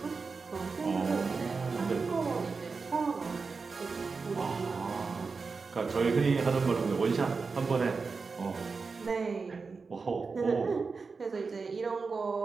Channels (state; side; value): quieter; left; 4.6 dB